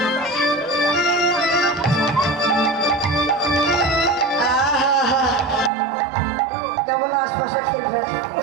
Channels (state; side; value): drops out; left; at 5.7 s